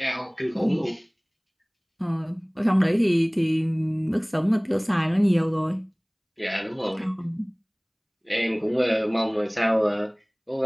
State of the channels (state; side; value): identical; both; correlation 1.00